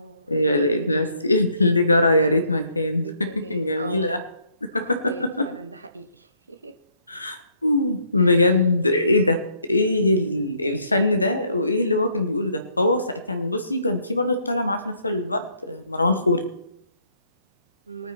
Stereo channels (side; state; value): both; inverted; correlation -0.68